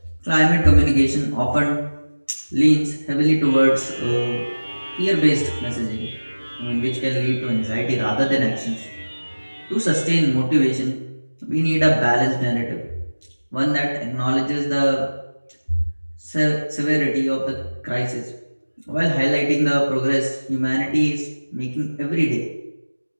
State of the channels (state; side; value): inverted; both; correlation -1.00